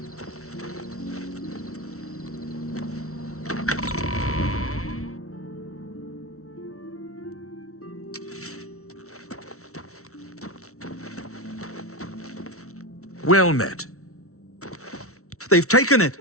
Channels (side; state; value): right; late; 0.64 ms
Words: Well met. They've taken it!